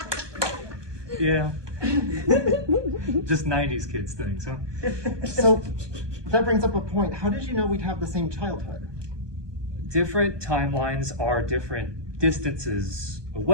Yeah. Just 90s kids things, huh? So, that brings up a point. How did you know we'd have the same childhood? Different timelines are different distances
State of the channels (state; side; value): late; left; 1.2 ms